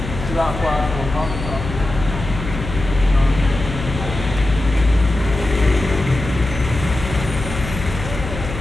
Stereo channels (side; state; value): left; noise; hum, 8 dB below the sound